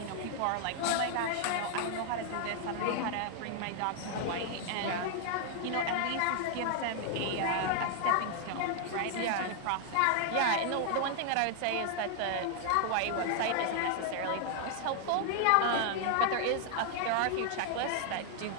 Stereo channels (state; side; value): different; both; correlation 0.00